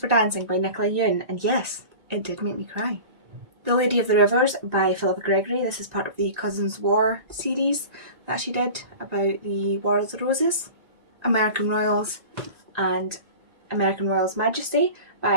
Dancing by Nicola Yoon, and yes, it did make me cry. The Lady of the Rivers by Philippa Gregory. This is part of the Cousins War series that she did about the War of the Roses. American Royals and American Royals Majesty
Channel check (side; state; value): left; late; 1.9 ms